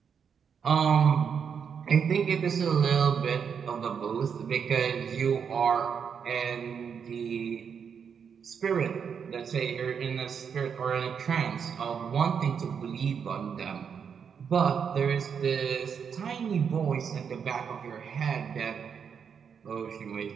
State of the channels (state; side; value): quieter; left; 7.0 dB